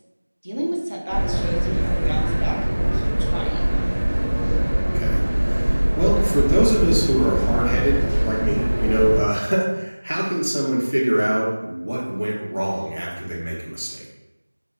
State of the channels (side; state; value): both; inverted; correlation -1.00